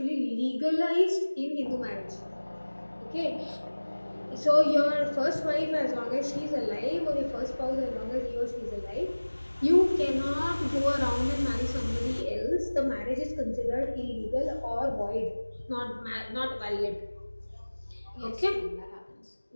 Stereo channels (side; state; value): both; inverted; correlation -1.00